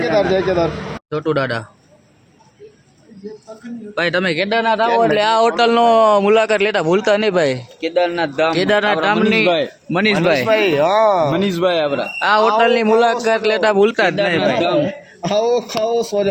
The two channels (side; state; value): both; identical; correlation 1.00